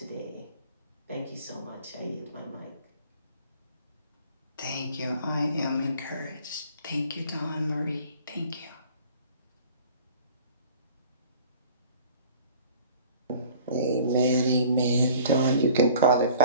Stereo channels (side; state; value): both; inverted; correlation -0.48